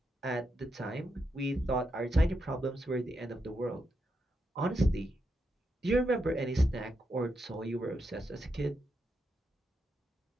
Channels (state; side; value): normal; both; correlation 0.83